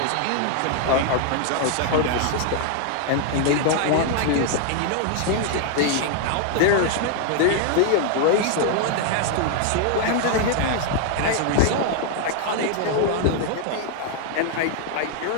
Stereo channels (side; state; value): both; different; correlation 0.00